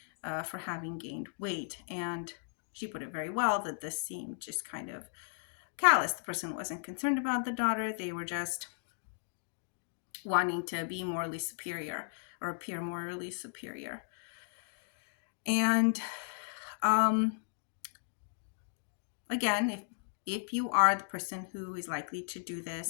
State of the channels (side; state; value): right; silent; digital silence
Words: for having gained weight. And she put it very well that this seemed just kind of callous. The person wasn't concerned about the daughter. They were just wanting to be morally superior or appear morally superior. And again, if you are the person who is likely to do